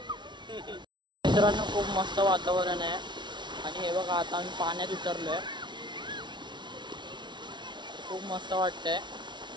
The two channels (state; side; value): late; left; 0.22 ms